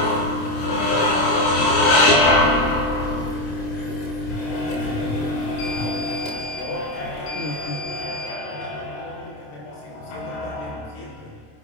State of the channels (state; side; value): late; right; 27 ms